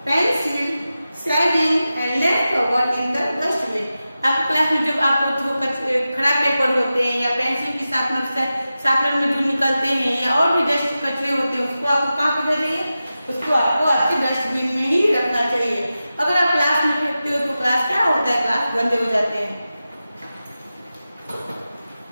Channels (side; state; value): both; inverted; correlation -0.93